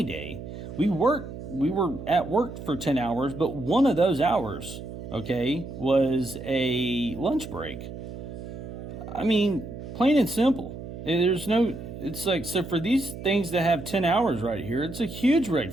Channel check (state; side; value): noise; right; hum, 10 dB below the sound